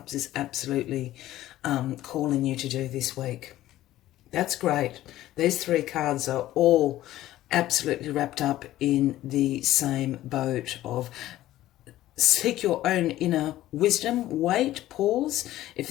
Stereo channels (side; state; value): right; quieter; 14.7 dB